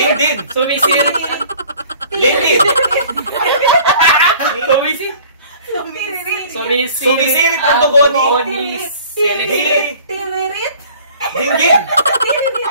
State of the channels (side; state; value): both; inverted; correlation -0.50